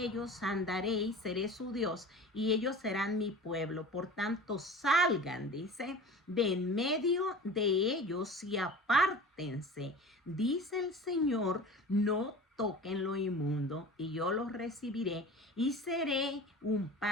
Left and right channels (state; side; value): normal; both; correlation 0.38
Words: ellos, andaré y seré su Dios, y ellos serán mi pueblo. Por tanto, salgan, dice, de en medio de ellos y apártense, dice el Señor, no toquen lo inmundo, y yo los recibiré y seré un